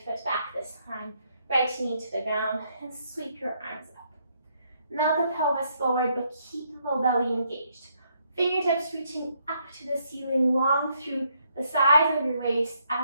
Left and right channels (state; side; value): inverted; both; correlation -0.73